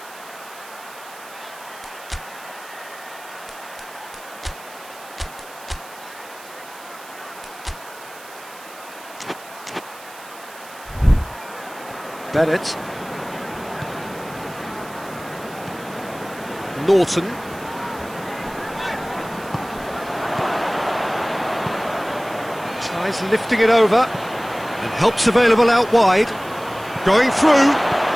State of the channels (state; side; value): noise; right; hiss, 19 dB below the sound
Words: Bennett. Norton. Tries lifting it over, and help's available out wide. Going through,